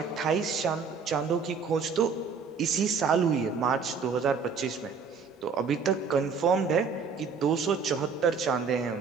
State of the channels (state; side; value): quieter; left; 5.5 dB